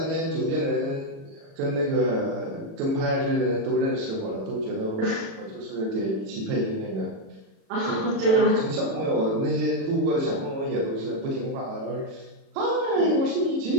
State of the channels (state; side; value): late; left; 36 ms